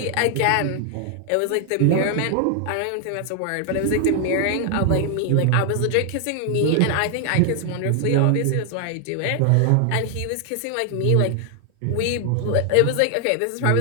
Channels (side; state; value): both; different; correlation 0.00